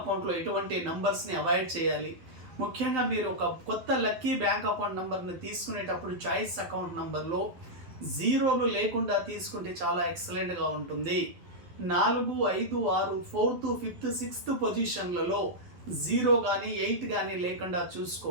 ఎటువంటి నంబర్స్ని అవాయిడ్ చేయాలి. ముఖ్యంగా మీరు ఒక కొత్త లక్కీ బ్యాంక్ అకౌంట్ నంబర్ని తీసుకునేటప్పుడు చాయిస్ అకౌంట్ నంబర్లో జీరోలు లేకుండా తీసుకుంటే చాలా ఎక్సలెంట్గా ఉంటుంది. 4, 5, 6, 4th, 5th, 6th పొజిషన్లలో 0 కానీ 8 కానీ లేకుండా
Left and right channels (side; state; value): left; late; 12 ms